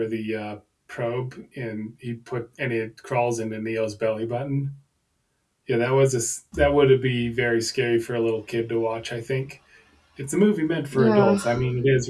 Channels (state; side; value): identical; both; correlation 1.00